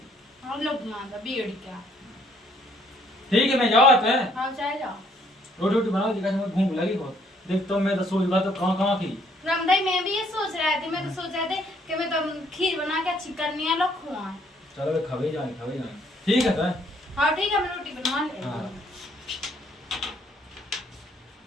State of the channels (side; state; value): both; normal; correlation 0.66